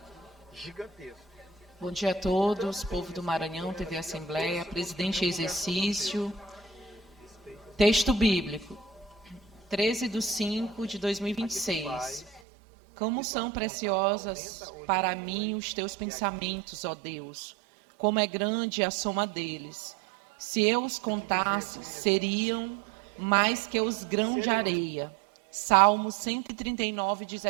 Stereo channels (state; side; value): drops out; left; at 12.4 s